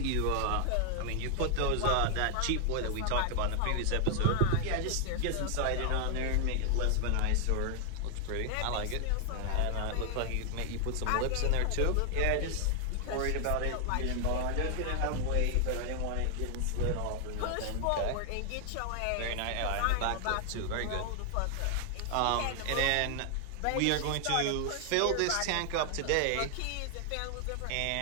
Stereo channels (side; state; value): both; different; correlation 0.00